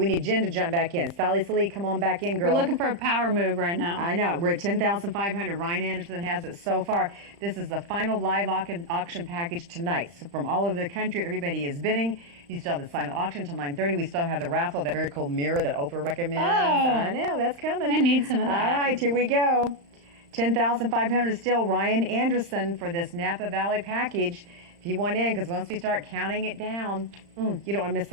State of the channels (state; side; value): late; left; 35 ms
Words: need Jen to jump back in. Sally Salee, come on back in, girl. We're looking for a power move right now. I know. We're at $10,500. Ryan Anderson has it so far. This is the final live auction package tonight. So from all over the country, everybody is bidding. You still have the silent auction till 9:30. We still have the raffle, that very cool mirror that Oprah recommends. Oh, I know, that's coming. I need some of that. All right, here we go. $10,500 still. Ryan Anderson for this Napa Valley package. If you want in, because once we start counting it down, you don't want to miss